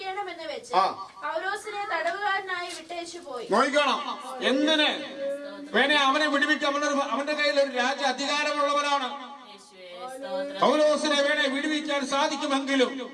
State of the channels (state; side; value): identical; both; correlation 1.00